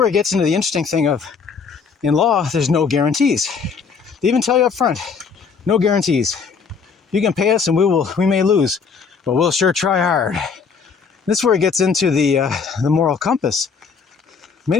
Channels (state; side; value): quieter; right; 5.6 dB